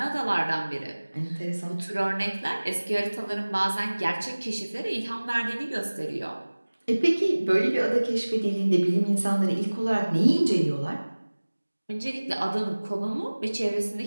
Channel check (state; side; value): inverted; both; correlation -1.00